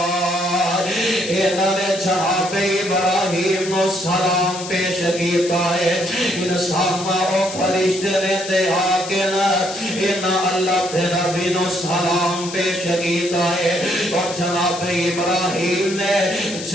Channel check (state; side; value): noise; left; hiss, 10 dB below the sound